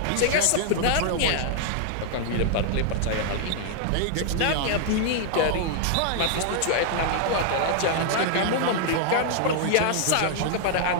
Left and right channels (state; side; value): different; both; correlation -0.01